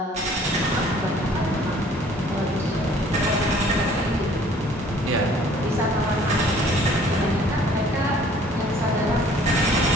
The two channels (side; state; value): both; normal; correlation 0.55